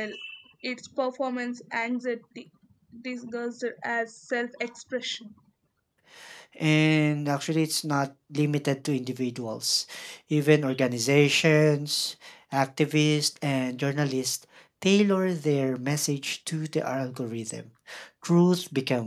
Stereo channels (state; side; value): identical; both; correlation 1.00